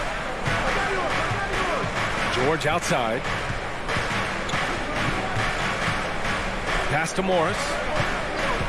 George outside. Pass to Morris.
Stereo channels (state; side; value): identical; both; correlation 1.00